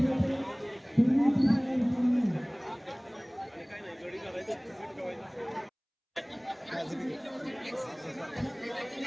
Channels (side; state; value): both; identical; correlation 1.00